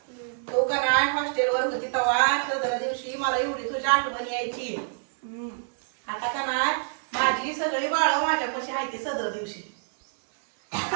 तो का नाही हॉस्टेलवर होती तेव्हा सदर दिवशी मला एवढी तुझी आठवण यायची आता का नाही माझी सगळी बाळ माझ्यापाशी आहे ती सदर दिवशी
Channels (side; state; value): left; silent; digital silence